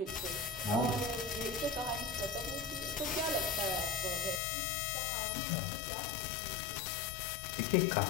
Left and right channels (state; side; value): drops out; right; at 4.4 s